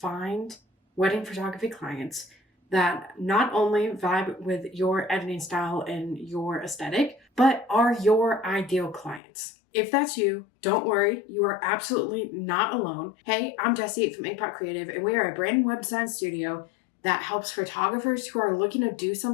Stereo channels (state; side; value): drops out; right; at 9.2 s